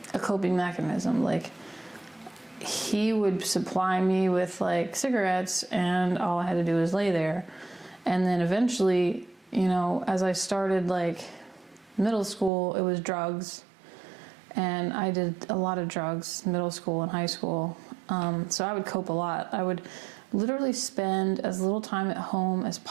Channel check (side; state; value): left; drops out; at 12.5 s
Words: a coping mechanism. Like, he would supply me with like cigarettes, and all I had to do was lay there. And then eventually, you know, as I started like middle school, it was drugs. And I did a lot of drugs, middle school and high school. So I would cope a lot. I would literally spend as little time at home as